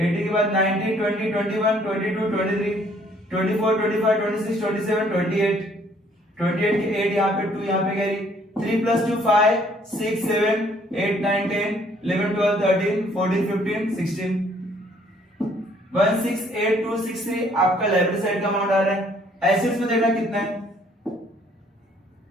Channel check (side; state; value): both; normal; correlation 0.62